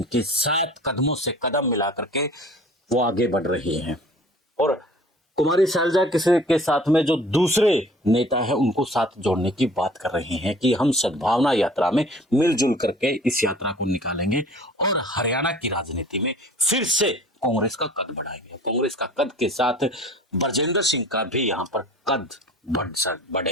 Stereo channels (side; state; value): both; normal; correlation 0.47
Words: 7 कदमों से कदम मिला करके वो आगे बढ़ रही हैं, और कुमारी शैलजा के साथ में जो दूसरे नेता हैं उनको साथ जोड़ने की बात कर रहे हैं कि हम सद्भावना यात्रा में मिलजुल करके इस यात्रा को निकालेंगे और हरियाणा की राजनीति में फिर से कांग्रेस का कद बढ़ाएंगे। कांग्रेस का कद के साथ ब्रजेंद्र सिंह का भी यहाँ पर कद